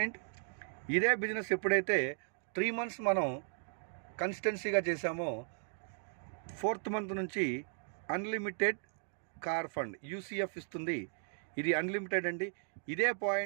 ఇదే బిజినెస్ ఎప్పుడైతే 3 months మనం కన్సిస్టెన్సీగా చేసామో 4th month నుంచి అన్లిమిటెడ్ కార్ ఫండ్ UCF ఇస్తుంది. ఇది అన్లిమిటెడ్ అండి. ఇదే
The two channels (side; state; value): left; silent; 54 dB below the other